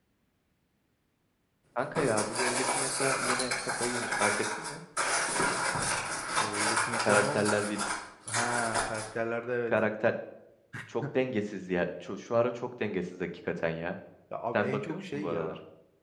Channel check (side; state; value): both; identical; correlation 1.00